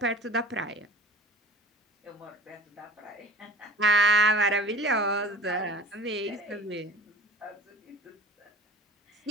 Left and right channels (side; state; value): both; normal; correlation 0.41